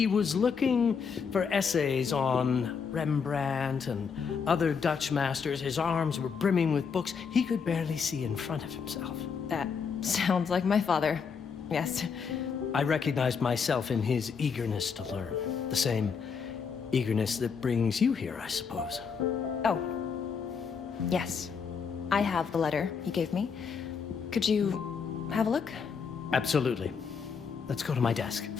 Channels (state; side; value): quieter; right; 6.1 dB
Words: was looking for essays on Rembrandt and other Dutch masters. His arms were brimming with books. He could barely see in front of himself. That sounds like my father. Yes. I recognized myself in his eagerness to learn. The same eagerness that brings you here, I suppose. Oh. Yes. I have the letter he gave me. Could you have a look? Absolutely. Let's go to my desk.